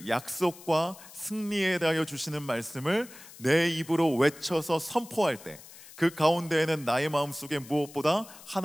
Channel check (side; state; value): left; noise; hiss, 19 dB below the sound